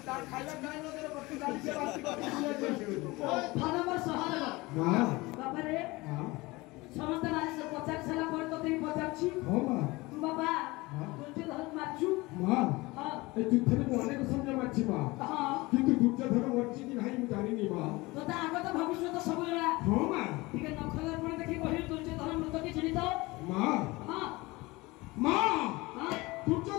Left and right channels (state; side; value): quieter; right; 22.2 dB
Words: তার খাইলা খাইলা করে বসি গালিছে বাসি ଧନମ ସହଦେବ ମା ବାପାରେ ମା ସମସ୍ତେ ପଚାରି ସାରିଲା ପରେ ତୋତେ ବି ପଚାରୁଛି ହଁ ମା ତୁ ବାପା ଦୁର୍ଯ୍ୟୋଧନକୁ ମାରିଛୁ ମା ହଁ ଏ ଯୁଦ୍ଧରେ ମୁଁ ଅନେକ ସୈନ୍ୟ ମାରିଛି ମା ହଁ କିନ୍ତୁ ଦୁର୍ଯ୍ୟୋଧନ ମରିଛି କି ନାହିଁ ମୁଁ ଜାଣିନି ମା ତୋତେ ଆଗତ ଭବିଷ୍ୟତ ସବୁ ଜଣା ହଁ ମା ଟିକେ ନଖର ପୁଣି ଦେଖି କହିଲୁ ଦୁର୍ଯ୍ୟୋଧନ ମୃତ କି ଚିହ୍ନିତ ମା ହଁ ମା ହଁ